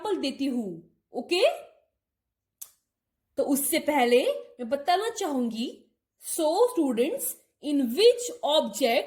देती हूं। ओके, तो उससे पहले मैं बताना चाहूंगी, सो स्टूडेंट्स, इन विच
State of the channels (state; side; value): identical; both; correlation 1.00